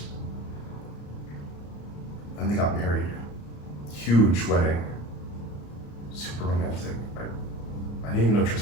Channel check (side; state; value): right; late; 34 ms